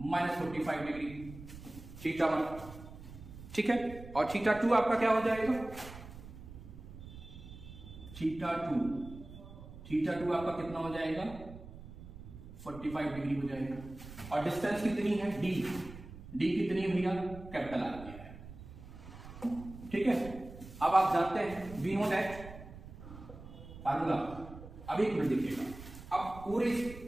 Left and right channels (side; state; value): right; noise; rumble, 15 dB below the sound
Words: -45 डिग्री θ1, ठीक है। और θ2 आपका क्या हो जाएगा, θ2 आपका कितना हो जाएगा 45 डिग्री हो जाएगा। और डिस्टेंस कितनी है, डी कितनी है भैया, कैपिटल आर है, ठीक है। अब आप जानते हैं वी नो दैट फार्मूला। अब एक मिनट देखिएगा, अब पूरे